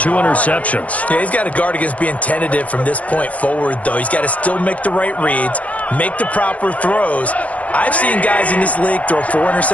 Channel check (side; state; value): right; late; 0.067 ms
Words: interceptions. Yeah, he's got to guard against being tentative from this point forward, though. He's got to still make the right reads, make the proper throws. I've seen guys in this league throw 4